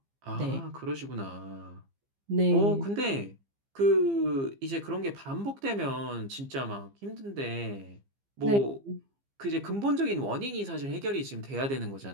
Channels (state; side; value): late; left; 15 ms